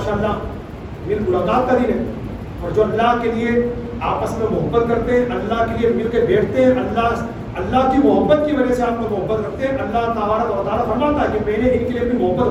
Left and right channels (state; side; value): identical; both; correlation 1.00